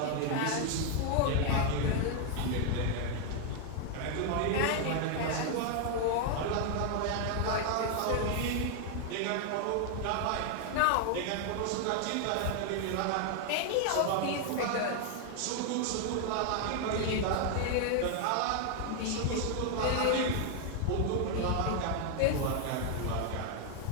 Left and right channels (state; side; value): different; both; correlation 0.00